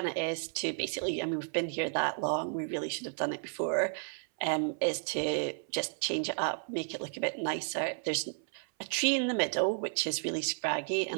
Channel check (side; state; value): left; silent; 56 dB below the other